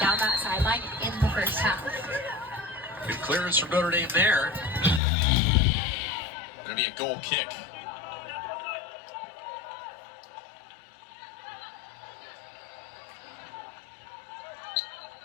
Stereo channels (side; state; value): right; drops out; at 5.0 s